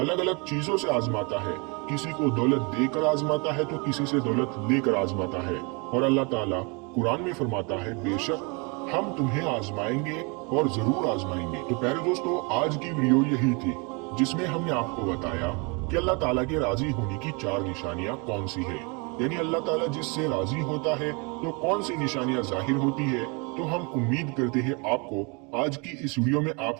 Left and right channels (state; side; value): quieter; left; 31.2 dB